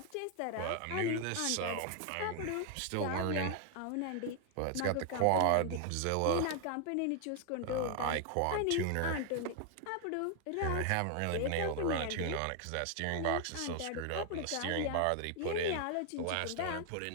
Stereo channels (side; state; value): both; different; correlation 0.00